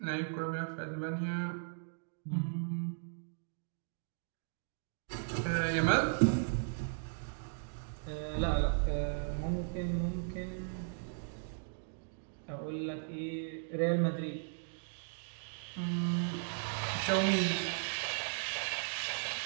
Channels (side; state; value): left; silent; digital silence